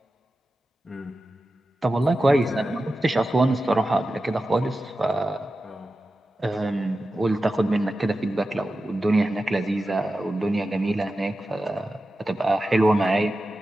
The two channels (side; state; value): both; normal; correlation 0.93